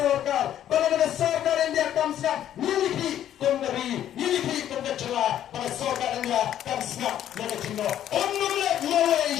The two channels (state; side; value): quieter; right; 11.1 dB